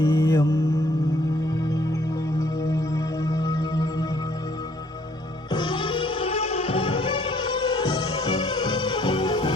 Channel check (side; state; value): both; normal; correlation 0.63